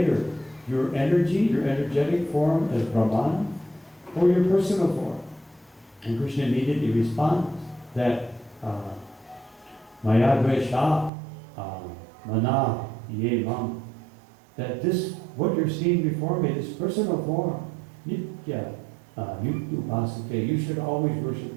Your energy, your energetic form as Brahman, or your personal form? And Krishna immediately responds that Maya Dvesha Mana Ye Mam, that this, what you're seeing before me, this personal form, Nitya Yuktu, you should always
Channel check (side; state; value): left; drops out; at 11.1 s